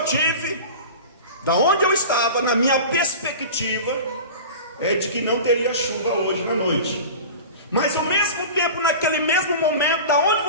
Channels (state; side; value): inverted; both; correlation -0.34